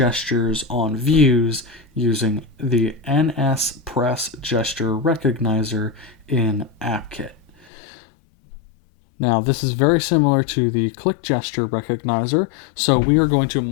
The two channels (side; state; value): right; drops out; at 7.7 s